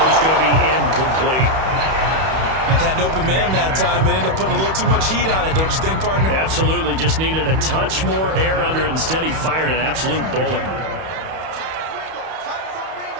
is going to be incomplete. Had an open man that time, but ended up putting a little too much heat on it, don't you think, partner? Absolutely. Just needed a touch more air under it. Instead, he fired an absolute bullet.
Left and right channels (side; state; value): left; late; 31 ms